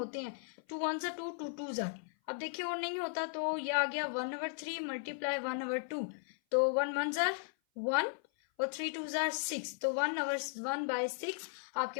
हैं, 2 1 2 2 2 जार। अब देखिए और नहीं होता तो ये आ गया 1/3 मल्टीप्लाई 1/2, तो 1 1 जार 1 और 3 2 जार 6, तो 1/6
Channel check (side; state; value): right; silent; 54 dB below the other